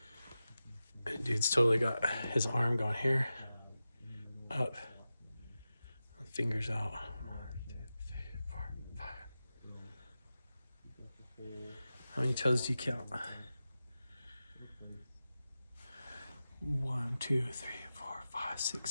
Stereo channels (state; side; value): inverted; both; correlation -0.93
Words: Dude's totally got his arm going here, up, fingers out. 1, 2, 3, 4, 5. How many toes do you count? 1, 2, 3, 4, 5, 6,